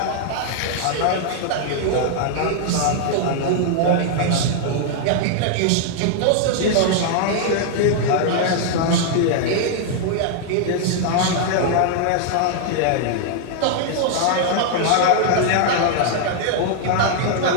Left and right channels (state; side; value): different; both; correlation -0.01